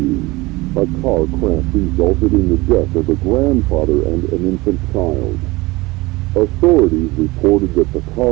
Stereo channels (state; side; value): quieter; left; 21.8 dB